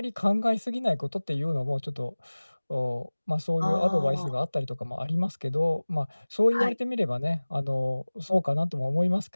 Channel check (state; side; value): inverted; both; correlation -1.00